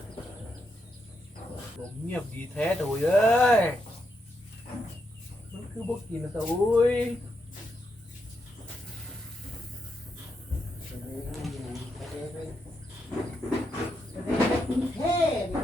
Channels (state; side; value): normal; both; correlation 0.82